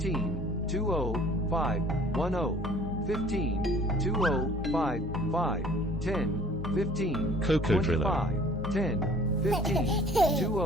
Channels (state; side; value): normal; both; correlation 0.52